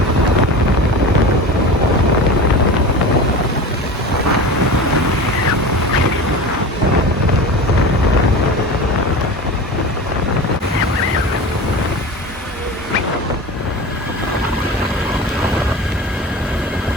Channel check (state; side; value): normal; both; correlation 0.32